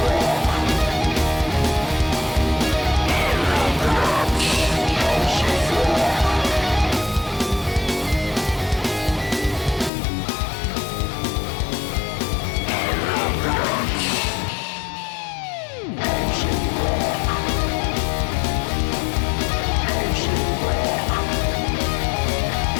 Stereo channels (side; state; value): right; drops out; at 9.9 s